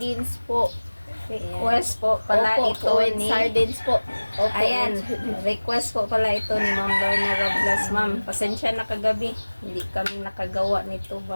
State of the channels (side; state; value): both; inverted; correlation -1.00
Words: po. Request po pala Opo ito with ni... sardines po. Opo Ayan, with- request po pala ito ni Ma'am Lorna Roblas. Ma'am, pasensya na kagabi. Hindi kami nakagawa nito